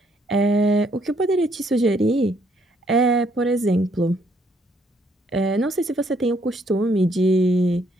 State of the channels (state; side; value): normal; both; correlation 0.69